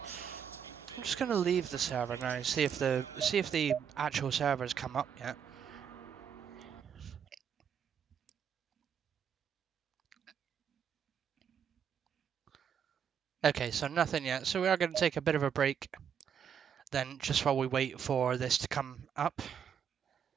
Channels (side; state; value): left; quieter; 7.9 dB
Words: I'm just going to leave the server now, see if the actual servers come up yet. Okay, so nothing yet. So we are going to take a bit of a break then, just while we wait for this to come up.